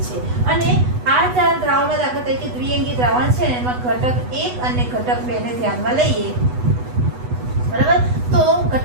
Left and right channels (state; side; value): late; left; 8.1 ms